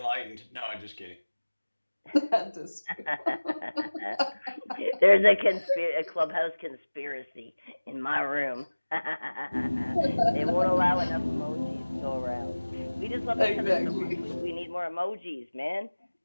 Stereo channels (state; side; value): inverted; both; correlation -1.00